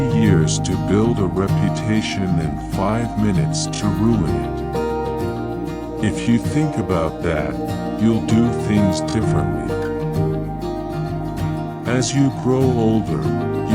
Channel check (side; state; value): both; identical; correlation 1.00